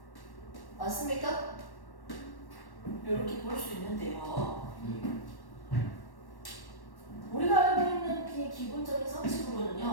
맞습니까? 이렇게 볼 수 있는데요. 우리가 알고 있는 기본적인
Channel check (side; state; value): right; late; 1.1 ms